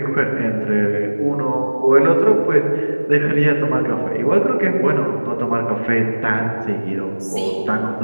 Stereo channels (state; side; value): inverted; both; correlation -1.00